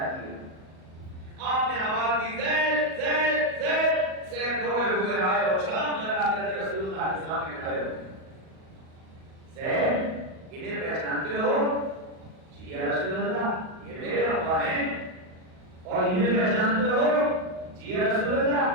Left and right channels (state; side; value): late; left; 38 ms